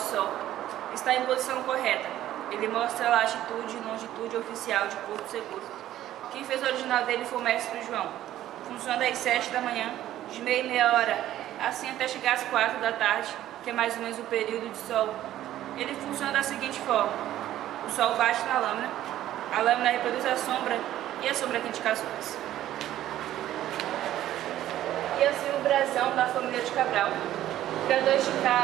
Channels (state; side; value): quieter; left; 13.1 dB